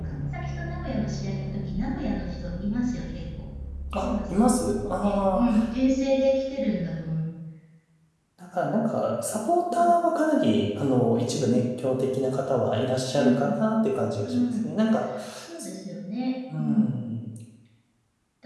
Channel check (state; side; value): identical; both; correlation 1.00